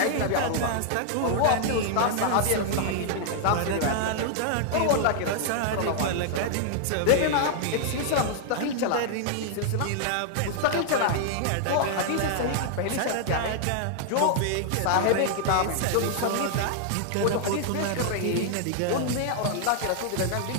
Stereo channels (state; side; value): different; both; correlation -0.01